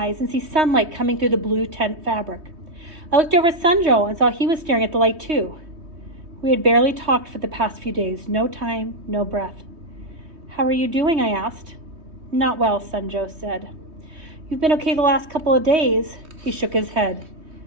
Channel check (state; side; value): late; left; 3.2 ms